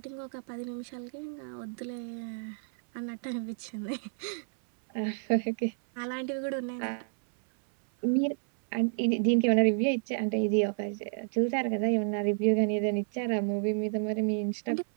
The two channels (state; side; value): silent; left; 58 dB below the other